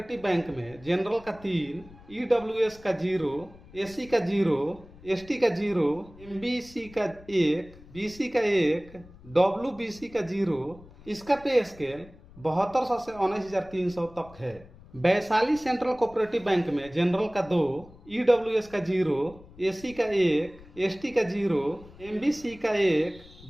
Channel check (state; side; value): noise; left; rumble, 21 dB below the sound